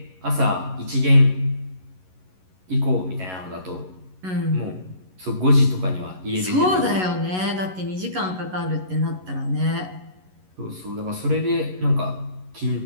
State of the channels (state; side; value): late; left; 11 ms